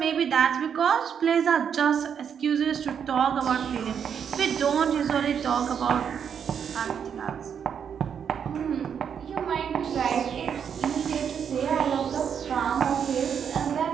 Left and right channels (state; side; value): quieter; left; 7.7 dB